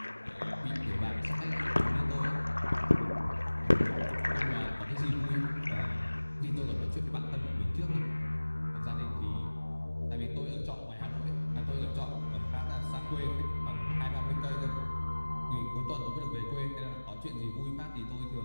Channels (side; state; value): both; inverted; correlation -1.00